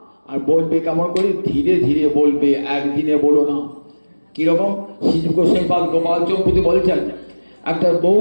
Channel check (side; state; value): both; inverted; correlation -1.00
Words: আর বলবে কেমন করে, ধীরে ধীরে বলবে, একদিনে বলো না। কিরকম? শ্রী গোস্বামীপাদ গোপাল চৌপতি বলছেন, একটা